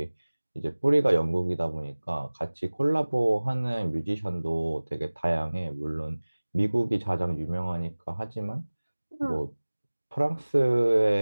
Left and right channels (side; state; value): both; inverted; correlation -1.00